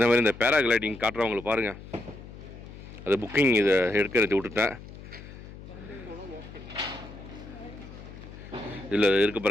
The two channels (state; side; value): noise; left; hum, 15 dB below the sound